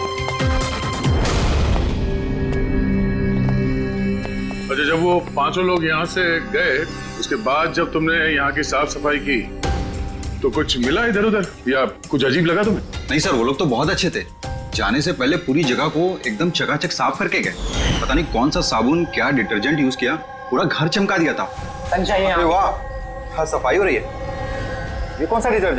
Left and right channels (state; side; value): identical; both; correlation 1.00